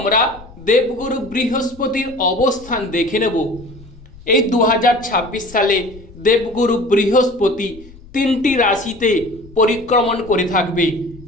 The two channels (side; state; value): left; noise; rumble, 21 dB below the sound